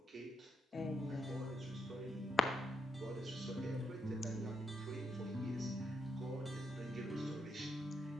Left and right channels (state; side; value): normal; both; correlation 0.80